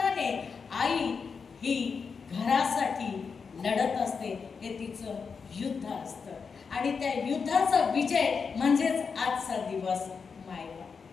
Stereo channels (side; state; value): right; quieter; 5.5 dB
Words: आई ही घरासाठी लढत असते. हे तिचं युद्ध असतं आणि त्या युद्धाचा विजय म्हणजेच आजचा दिवस